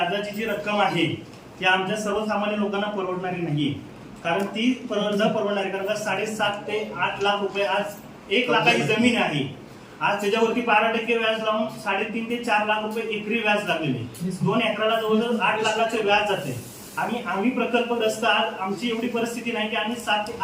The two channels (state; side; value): identical; both; correlation 1.00